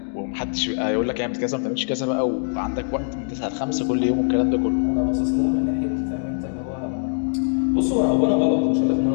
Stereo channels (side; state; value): right; silent; digital silence